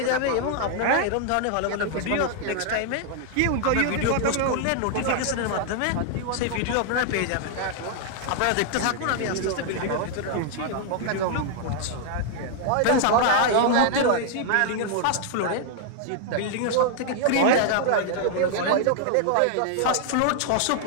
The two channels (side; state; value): both; different; correlation 0.00